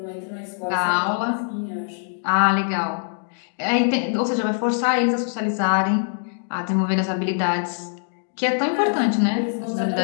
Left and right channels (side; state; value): right; silent; digital silence